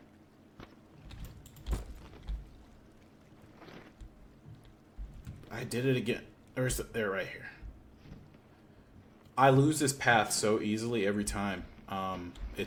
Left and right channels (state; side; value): identical; both; correlation 1.00